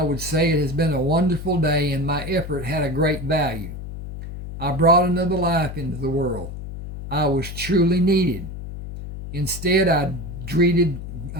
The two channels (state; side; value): noise; left; hum, 9 dB below the sound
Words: would say it has been a wonderful day and my effort had a great value. I brought another life into the world. I was truly needed. Instead, I dreaded